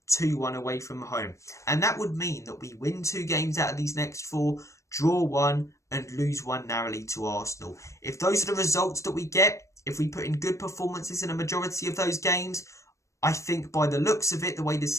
2-1 away from home. And that would mean that we win 2 games out of these next 4, draw 1 and lose 1 narrowly to Arsenal. If those are the results that we get, If we put in good performances in a majority of those games, I think by the looks of it, the way the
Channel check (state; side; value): late; right; 0.15 ms